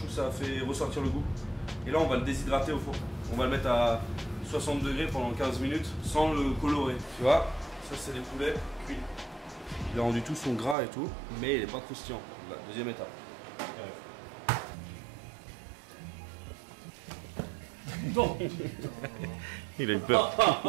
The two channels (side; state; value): left; drops out; at 10.8 s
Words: que ça fait ressortir le goût. Et là, on va le déshydrater au four. On va le mettre à 60 degrés pendant 15 minutes sans le colorer. Tu vois, ça, c'est des poulets cuits. Il a rendu tout son gras et tout, mais il n'est pas croustillant. La deuxième étape. Non. Il a eu peur.